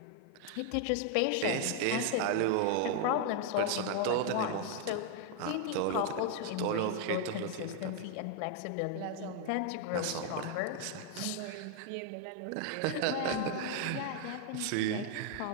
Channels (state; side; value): different; both; correlation 0.00